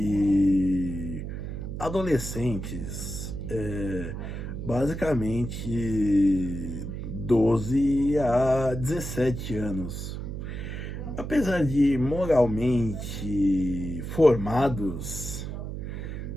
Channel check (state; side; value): noise; right; hum, 6 dB below the sound